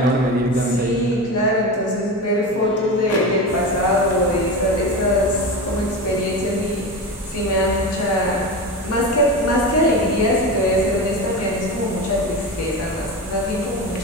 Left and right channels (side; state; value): both; normal; correlation 0.24